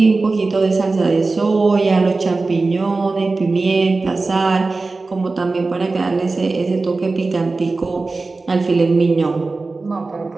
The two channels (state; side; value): quieter; left; 3.7 dB